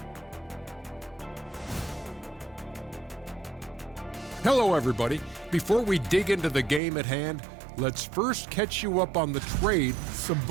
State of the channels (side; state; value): left; drops out; at 6.8 s